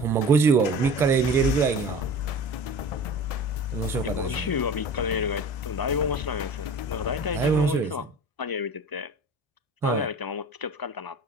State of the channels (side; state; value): right; late; 1.7 ms